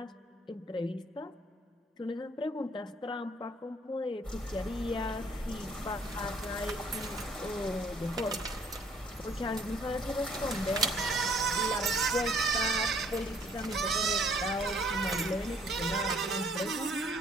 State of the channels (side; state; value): both; normal; correlation 0.61